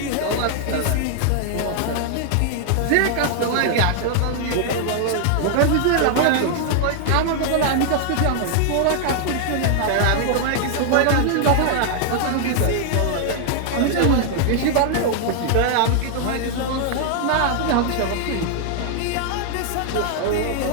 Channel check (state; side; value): different; both; correlation 0.00